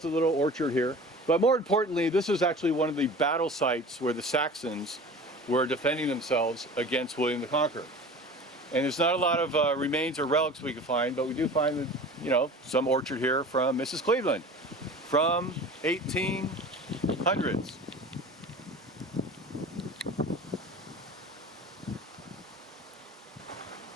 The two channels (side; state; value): both; normal; correlation 0.39